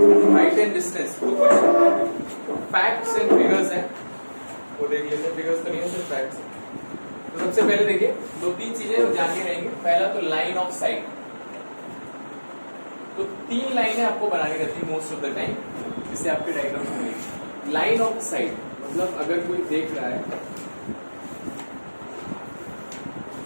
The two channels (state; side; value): inverted; both; correlation -1.00